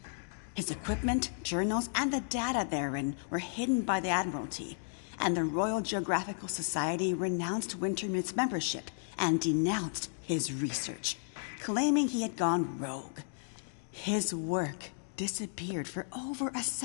His equipment, journals, and the data therein were hidden by the Admiralty, and the Royal Geographical Society renounced Wintermute's membership and denounced his research, claiming he had gone rogue. His work disappeared for over a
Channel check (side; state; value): right; silent; digital silence